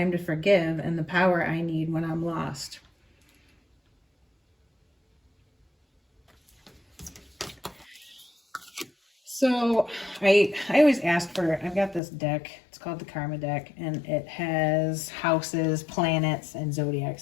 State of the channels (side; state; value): right; drops out; at 12.0 s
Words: to forgive, and the power I need when I'm lost. So I always ask for, I've got this deck, it's called the Karma deck, and it has houses, planets, and zodiac